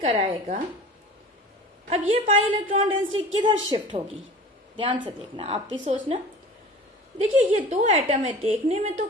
अब ये पाई इलेक्ट्रॉन डेंसिटी किधर शिफ्ट होगी, ध्यान से देखना, आप भी सोचना। देखिए ये दो एटम है, देखने में तो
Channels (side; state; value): both; normal; correlation 0.40